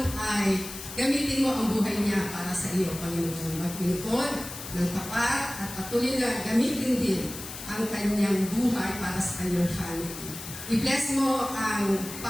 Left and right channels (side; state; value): left; noise; hiss, 11 dB below the sound